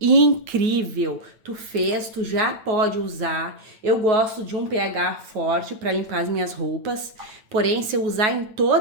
Tu fez, tu já pode usar. Eu gosto de um pH forte para limpar as minhas roupas. Porém, se eu usar em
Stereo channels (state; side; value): late; left; 8.9 ms